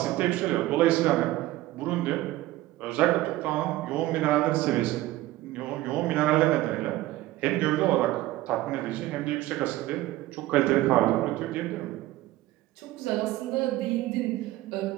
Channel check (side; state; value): left; quieter; 16.7 dB